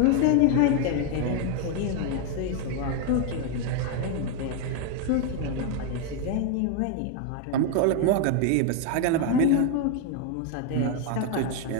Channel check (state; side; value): different; both; correlation 0.01